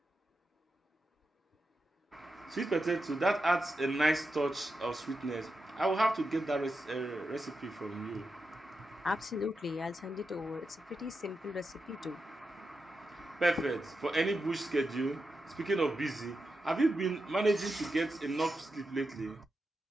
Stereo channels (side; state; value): both; normal; correlation 0.89